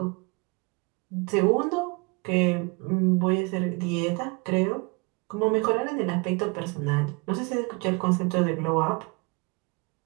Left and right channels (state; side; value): quieter; left; 29.6 dB